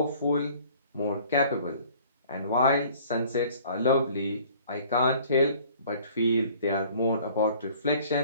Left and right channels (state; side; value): inverted; both; correlation -0.53